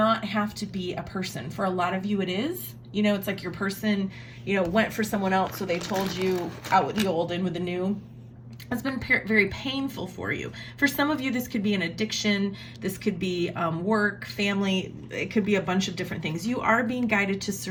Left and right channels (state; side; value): identical; both; correlation 1.00